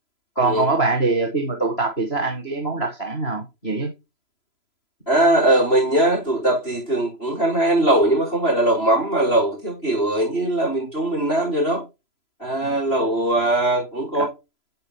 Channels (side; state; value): right; late; 3.0 ms